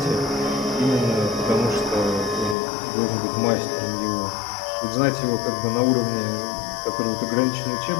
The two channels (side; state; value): right; drops out; at 2.6 s